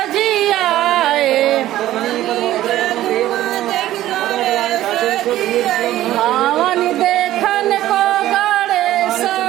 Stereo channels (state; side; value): quieter; left; 14.2 dB